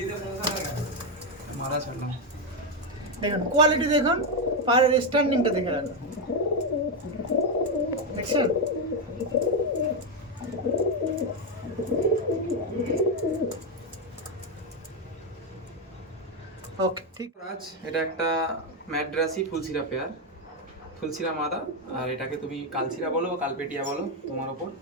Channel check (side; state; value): both; normal; correlation 0.06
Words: মারা ছাড়লাম, দেখুন কোয়ালিটি দেখুন, পায়রার স্ট্যান্ডিংটা দেখে রাখুন, দেখছেন? ওকে ঠিক। রাজ, এটা একটা ম্যাড্রাসি ফুলসিরা পেয়ার, ফুলসিরা মাদা, আর এটাকে তুমি কালসিরা বলো বা কালপেটিয়া বলো, তোমার ওপর।